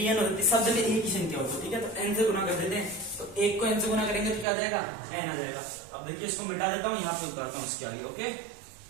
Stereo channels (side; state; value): left; drops out; at 4.5 s